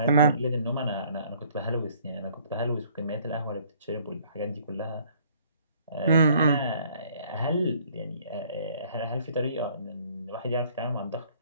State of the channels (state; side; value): inverted; both; correlation -0.59